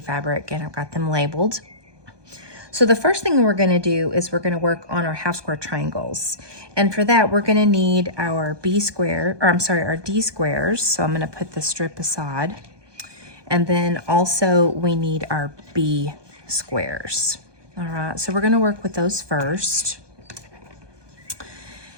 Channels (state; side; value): late; left; 1.2 ms